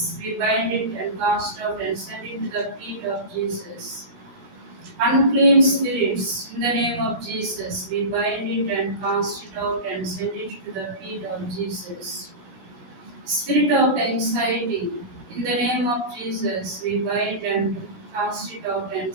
we bind it and cast out and send it to the feet of Jesus. Unclean spirits, in the name of Jesus, we bind it and cast it out and send it to the feet of Jesus. Spirit of anxiety, in the name of Jesus, we bind and cast it out and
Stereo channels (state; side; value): late; left; 17 ms